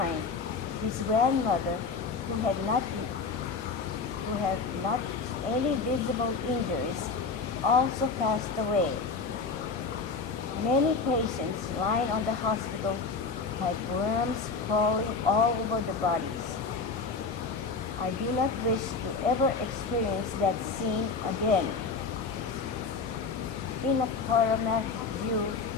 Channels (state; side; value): quieter; right; 4.7 dB